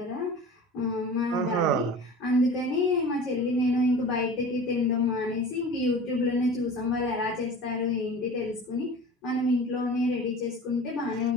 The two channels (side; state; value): both; normal; correlation 0.38